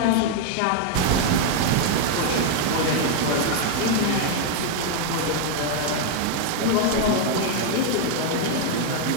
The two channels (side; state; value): both; different; correlation 0.00